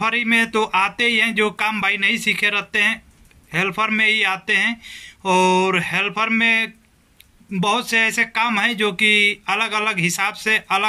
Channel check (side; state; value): both; identical; correlation 1.00